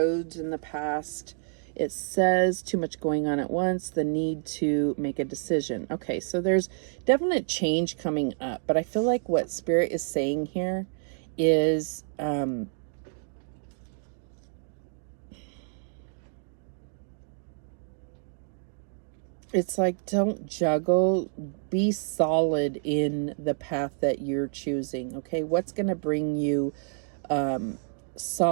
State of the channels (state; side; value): silent; left; 59 dB below the other